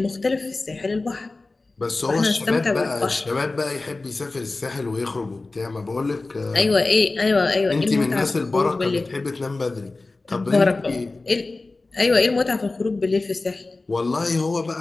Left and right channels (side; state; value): right; quieter; 3.4 dB